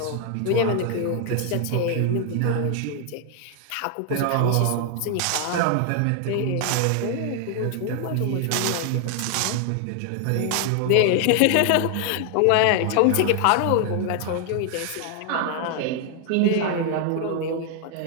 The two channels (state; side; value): different; both; correlation 0.00